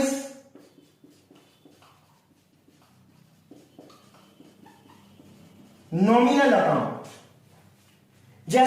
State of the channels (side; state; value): both; identical; correlation 1.00